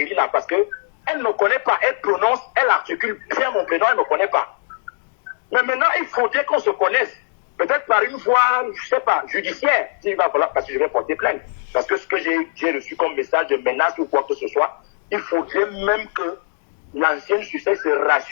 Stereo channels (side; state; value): right; silent; digital silence